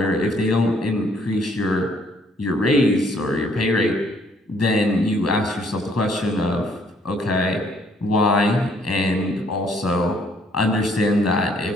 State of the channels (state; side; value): normal; both; correlation 0.65